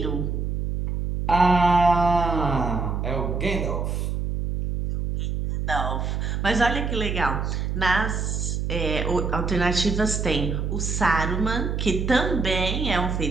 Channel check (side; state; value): right; noise; hum, 1 dB below the sound